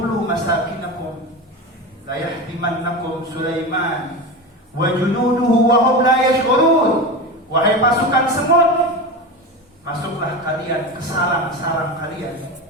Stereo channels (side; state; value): both; normal; correlation 0.24